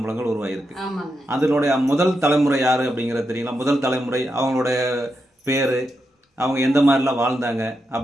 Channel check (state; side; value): normal; both; correlation 0.85